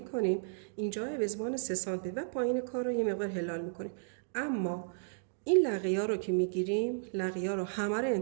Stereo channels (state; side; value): silent; left; digital silence